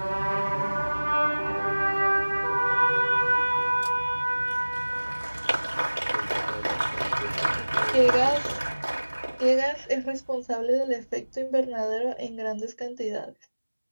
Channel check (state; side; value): inverted; both; correlation -1.00